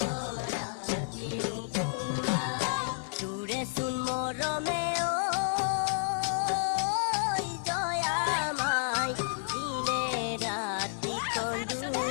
দূরে শুন মরমে ও জয়া মাই দিনে রাতি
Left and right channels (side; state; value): right; silent; digital silence